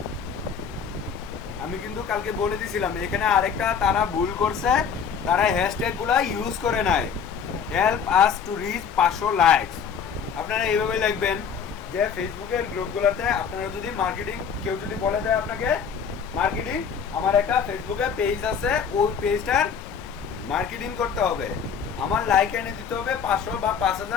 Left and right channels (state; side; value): quieter; right; 6.9 dB